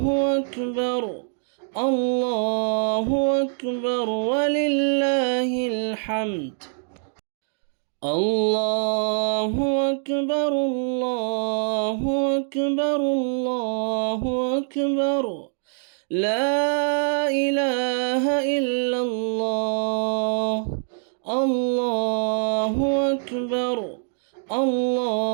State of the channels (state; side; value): silent; left; digital silence